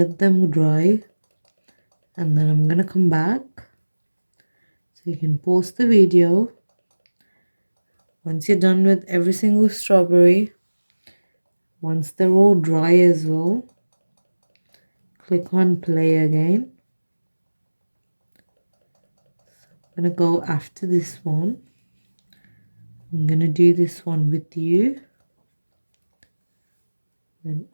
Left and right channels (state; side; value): inverted; both; correlation -1.00